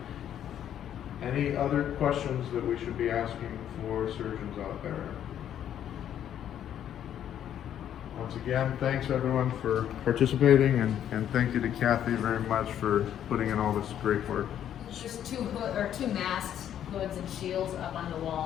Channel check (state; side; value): quieter; right; 10.2 dB